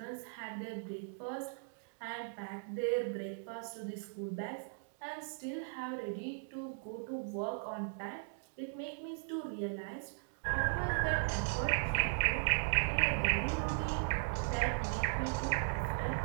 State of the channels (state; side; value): silent; left; digital silence